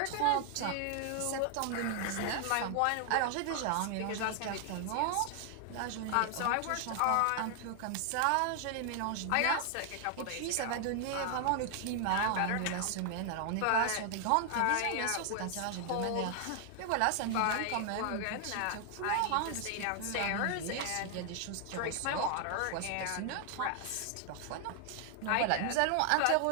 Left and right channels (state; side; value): different; both; correlation 0.00